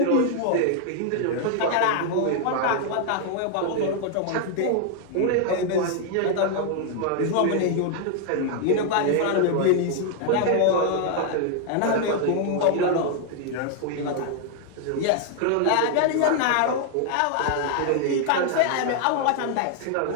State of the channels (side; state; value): both; different; correlation 0.00